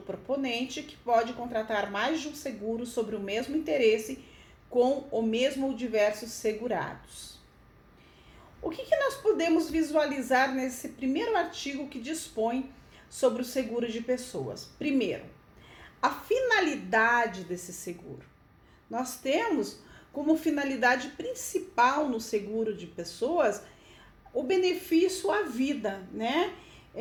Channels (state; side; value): identical; both; correlation 1.00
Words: proponente, que pode contratar mais de um seguro sobre o mesmo interesse com o mesmo ou diversos segurados. O que nós podemos visualizar nesse primeiro artigo que dispõe sobre o seguro de pessoas? Primeiro, a finalidade desse seguro. Nós temos como finalidade principal no seguro de pessoas o benefício à vida, né?